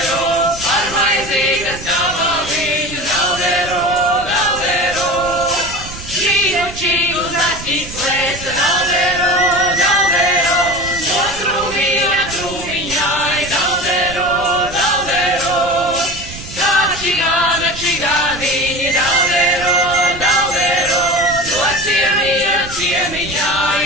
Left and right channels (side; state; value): right; noise; rumble, 13 dB below the sound